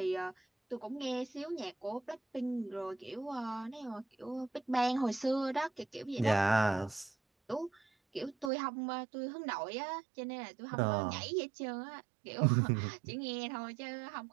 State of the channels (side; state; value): left; drops out; at 8.5 s